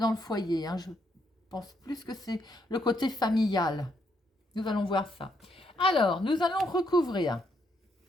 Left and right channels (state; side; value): normal; both; correlation 0.76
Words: le foyer. Hein, je pense plus que c'est le côté familial. Nous allons voir ça. Alors, nous allons recouvrir